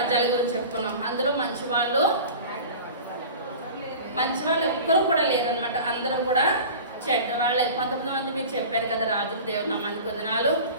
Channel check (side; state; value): both; inverted; correlation -0.37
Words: గురించి చెప్పుకున్నాం. అందులో మంచి వాళ్ళు ఎవ్వరూ కూడా లేరనమాట, అందరూ కూడా చెడ్డవాళ్ళే. 19 మంది మీరు చెప్పారు కదా రాజులు, దేవుని నామానికి వందనాలు.